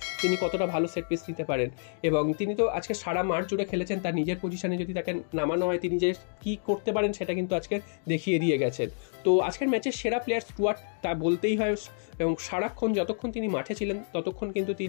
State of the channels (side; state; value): right; silent; digital silence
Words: তিনি কতটা ভালো সেট পিস নিতে পারেন। এবং তিনি তো আজকে সারা মাঠ জুড়ে খেলেছেন, তার নিজের পজিশনে যদি তাকে নামানো হয় তিনি যে কী করতে পারেন সেটা কিন্তু আজকে দেখিয়ে দিয়ে গেছেন। তো আজকের ম্যাচের সেরা প্লেয়ার স্টুয়ার্ট, তা বলতেই হয়। এবং সারাক্ষণ যতক্ষণ তিনি মাঠে ছিলেন ততক্ষণ কিন্তু